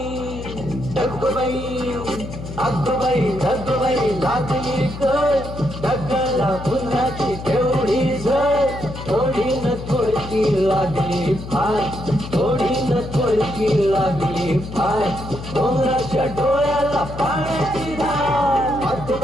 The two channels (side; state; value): left; noise; hum, 10 dB below the sound